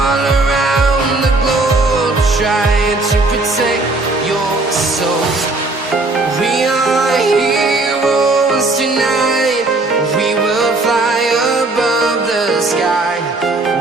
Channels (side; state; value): left; quieter; 3.1 dB